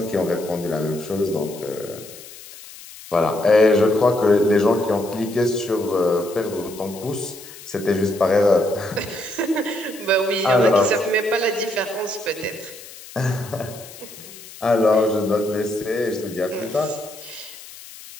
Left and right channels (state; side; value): noise; left; hiss, 17 dB below the sound